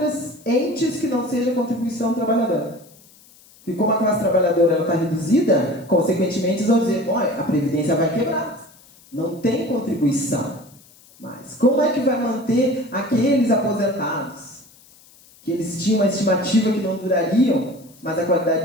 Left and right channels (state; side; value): noise; left; hiss, 26 dB below the sound